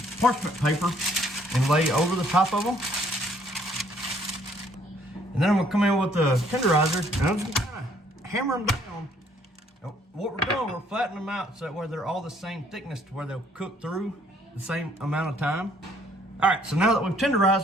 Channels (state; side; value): normal; both; correlation 0.63